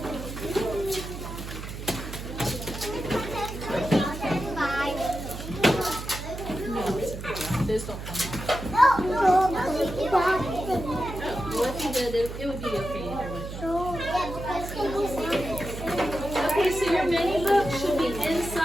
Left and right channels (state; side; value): noise; right; hum, 9 dB below the sound